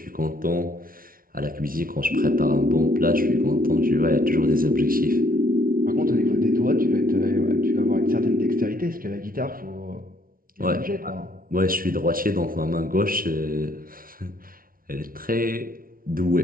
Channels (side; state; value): left; late; 0.42 ms